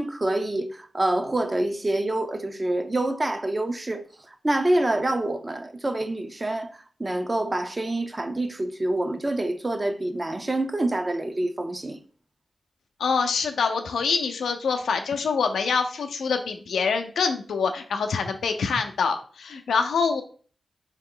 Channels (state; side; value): normal; both; correlation 0.88